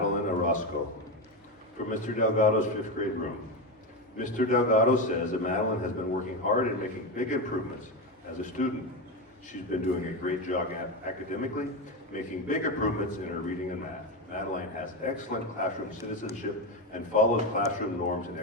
Orozco from Mr. Delgado's 5th grade room. Mr. Delgado says that Madeline has been working hard and making big improvements as a student. She's been doing a great job academically, making big improvements in her reading and math. Madeline has excellent classroom citizenship and follows classroom norms and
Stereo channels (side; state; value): both; normal; correlation 0.15